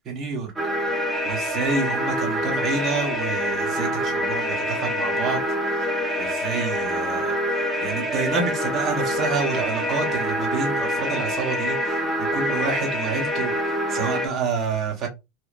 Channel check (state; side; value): normal; both; correlation 0.44